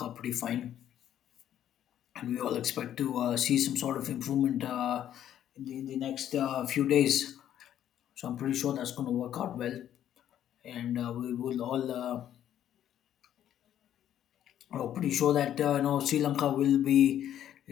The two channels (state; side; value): quieter; right; 10.9 dB